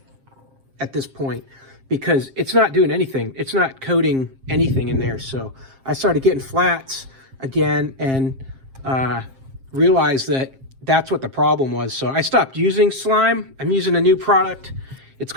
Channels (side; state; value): left; late; 7.5 ms